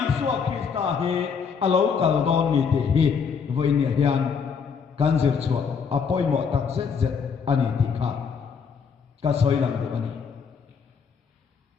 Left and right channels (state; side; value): quieter; right; 6.2 dB